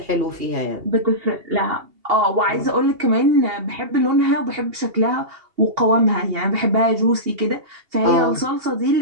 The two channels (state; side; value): late; left; 2.8 ms